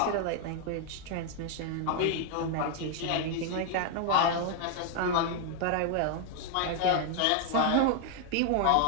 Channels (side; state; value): both; different; correlation 0.00